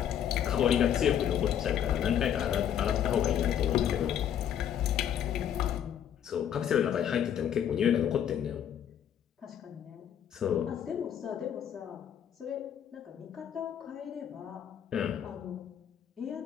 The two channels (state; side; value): quieter; right; 9.5 dB